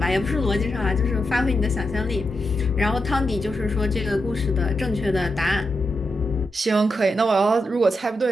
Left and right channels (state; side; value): normal; both; correlation 0.86